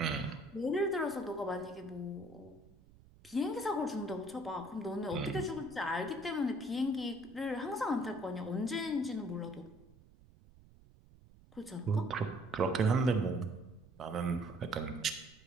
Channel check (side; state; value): right; noise; rumble, 24 dB below the sound